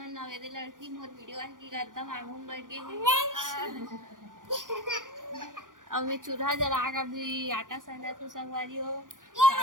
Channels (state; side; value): late; left; 0.88 ms